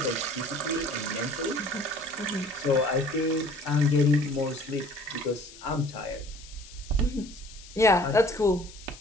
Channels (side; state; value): left; noise; hiss, 19 dB below the sound